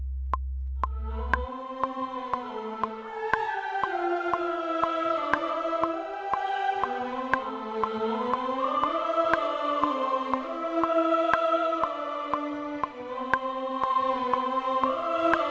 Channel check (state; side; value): identical; both; correlation 1.00